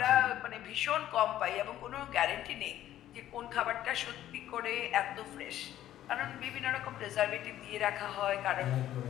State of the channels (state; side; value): quieter; right; 12.6 dB